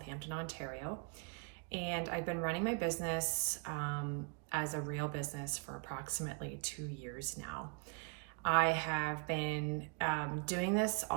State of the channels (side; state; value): left; quieter; 36.5 dB